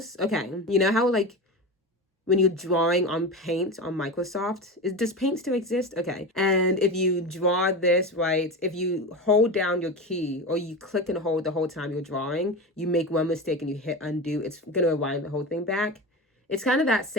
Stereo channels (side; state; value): both; normal; correlation 0.25